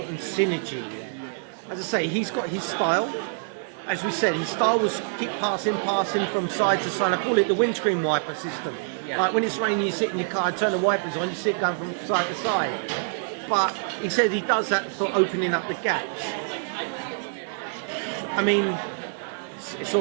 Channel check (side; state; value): left; silent; digital silence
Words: of synergy. As I say, he's got his style. As we said, his style was keep passing from side to side. I call it the windscreen wiper system. Like when it's raining, you sit in your car, turn the wipers on, you see it going from side to side. But he said he does that for opening up the gaps. I mean, it's all